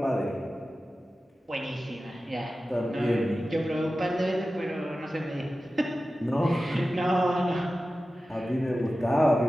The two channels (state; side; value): normal; both; correlation 0.94